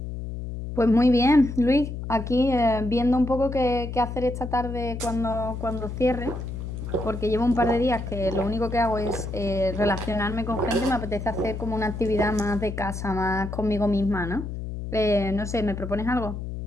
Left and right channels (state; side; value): noise; left; hum, 7 dB below the sound